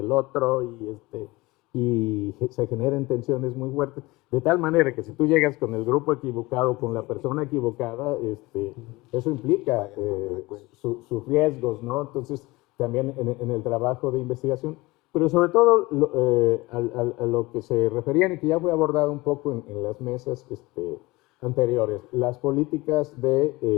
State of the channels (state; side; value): quieter; right; 21.7 dB